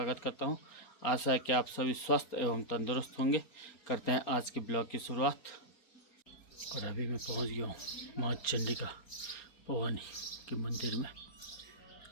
करता हूं। आशा है कि आप सभी स्वस्थ एवं तंदुरुस्त होंगे। करते हैं आज के ब्लॉग की शुरुआत। और अभी मैं पहुंच गया हूं माँ चंडिका भवानी के मंदिर में।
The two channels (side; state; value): right; late; 4.3 ms